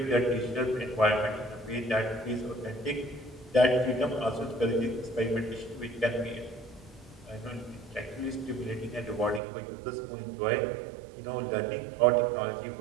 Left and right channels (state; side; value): drops out; left; at 9.4 s